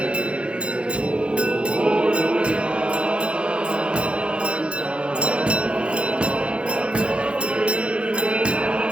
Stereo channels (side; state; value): left; late; 0.058 ms